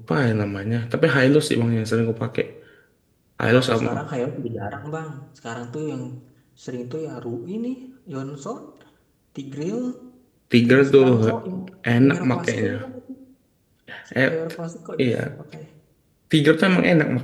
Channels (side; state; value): both; identical; correlation 1.00